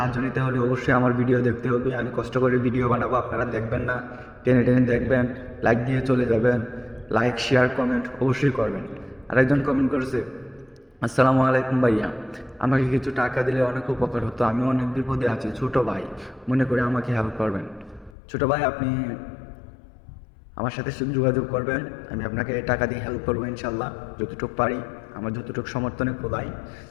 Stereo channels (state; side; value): drops out; right; at 18.1 s